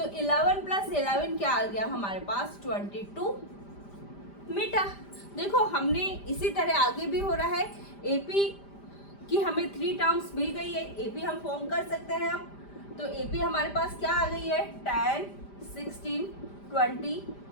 11 + 11 क्या आ गया हमारे पास? 22 मीटर। देखो, हमने इसी तरह आगे भी हो रहा है। एपी की हमें 3 टर्म्स मिल गई है, एपी हम फॉर्म कर सकते हैं अब। तो एपी हमारे पास क्या आ गई है? 10, 16, 22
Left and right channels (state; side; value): late; right; 5.0 ms